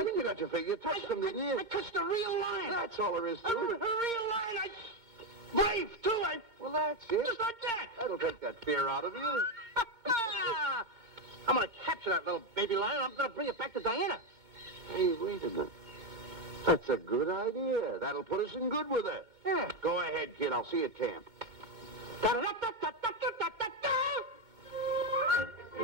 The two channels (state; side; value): late; left; 4.4 ms